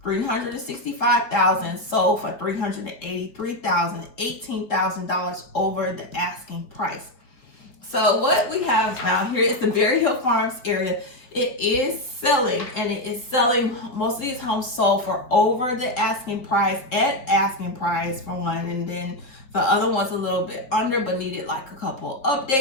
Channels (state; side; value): late; right; 4.0 ms